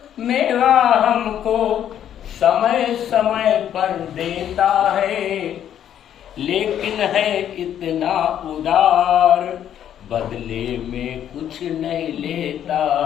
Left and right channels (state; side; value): quieter; right; 10.2 dB